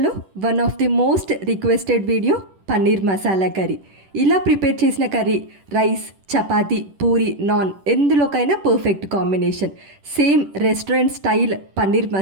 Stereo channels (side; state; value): left; late; 10 ms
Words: one of the most requested video paneer masala curry. ఇలా prepare చేసిన curry rice, chapati, puri, naan ఎందులోకైనా perfect combination. Same restaurant style paneer